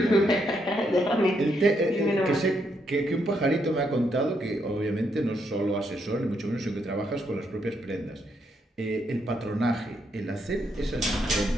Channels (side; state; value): both; normal; correlation 0.77